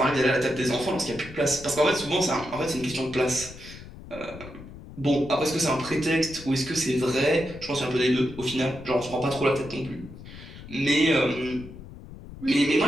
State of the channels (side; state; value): left; noise; rumble, 15 dB below the sound